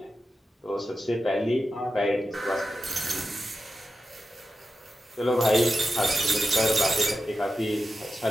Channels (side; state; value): both; normal; correlation 0.91